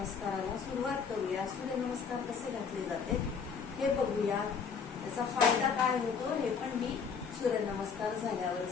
सुरुवात करूया. सूर्यनमस्कार कसे घातले जाते हे बघूया. त्याचा फायदा काय होतो हे पण मी सूर्यनमस्कार झाल्यावर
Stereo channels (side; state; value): right; quieter; 6.1 dB